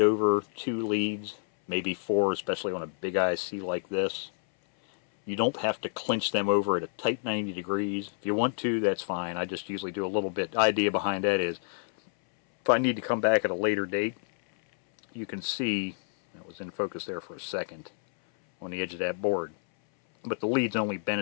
over 2 leads, maybe 4, especially on a big IC like this. You don't have to clinch them over at a tight 90 degrees. If you want to, that's fine. I just usually do a little bit. The idea behind that is, if I need to come back at a later date, you can see, that was in focus there for a second, on the edge of that board. But the lead's only bent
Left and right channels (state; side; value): silent; right; 59 dB below the other